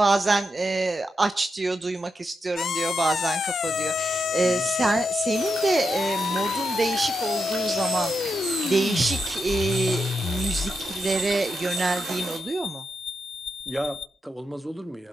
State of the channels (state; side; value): normal; both; correlation 0.85